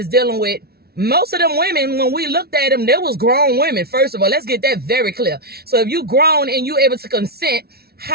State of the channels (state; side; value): late; left; 0.45 ms